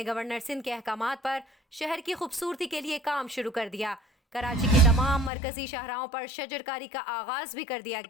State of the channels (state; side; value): drops out; right; at 5.3 s